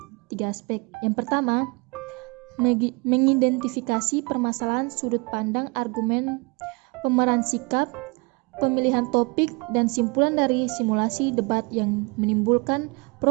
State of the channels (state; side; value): quieter; left; 29.5 dB